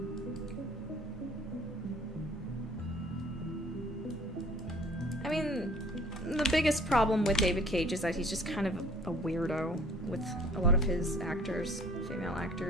I mean, the biggest problem with David Cage is that he's just kind of a weirdo with a lot of his actors, female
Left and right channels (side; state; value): both; normal; correlation 0.53